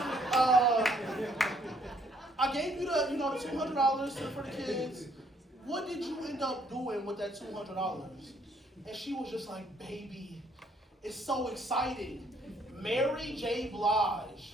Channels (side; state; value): both; normal; correlation 0.66